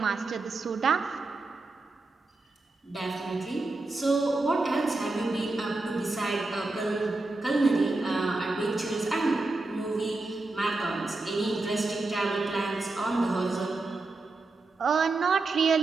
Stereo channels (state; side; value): quieter; left; 3.3 dB